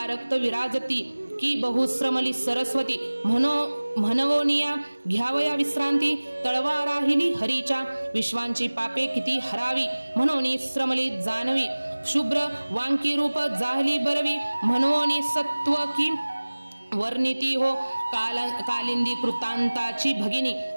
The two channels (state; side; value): inverted; both; correlation -1.00